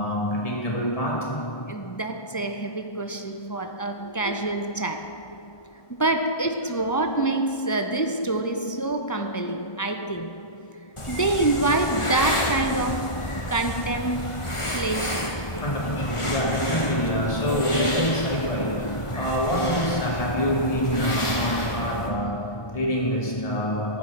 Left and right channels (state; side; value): late; right; 1.4 ms